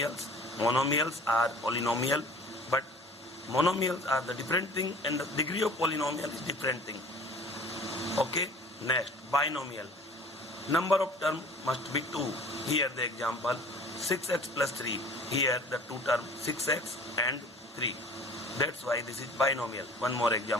Monomials are polynomial, but monomials are the different thing, and the degree of polynomial is different thing. Okay. Next, binomial. Number of term must be 2. Here the example 6x plus 3. Here the two term 6x and 3. That's why this is binomial. One more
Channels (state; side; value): normal; both; correlation 0.47